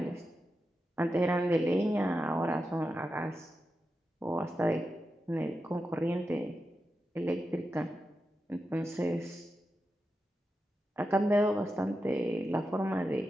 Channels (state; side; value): normal; both; correlation 0.89